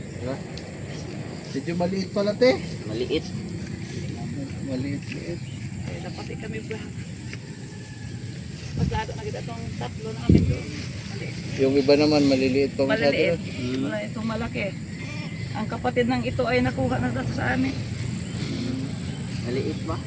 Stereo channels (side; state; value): both; identical; correlation 1.00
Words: Diba? Medyo maliit pala te. Maliit. Maliit-liit. Eh, dapat kami ba? Maglado na kita itong tatlo namin doon. Yung iba naman maliliit pa masyado. Maliliit. Wala itong malaki. Ang kapatid ng ito ay nakuha na dito sa amin. Maliit ba?